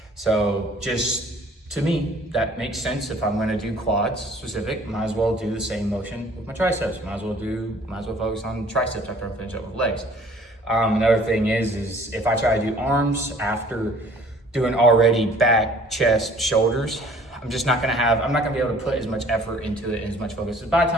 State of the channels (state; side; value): normal; both; correlation 0.53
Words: So just to me, that makes sense. If I'm gonna do quads specific, might as well do the same motion with my triceps. Might as well focus on triceps after I finish up with legs. Another thing is if I try to do arms after doing already back, chest, shoulders, I'm not gonna be able to put as much effort into it and as much focus. So by the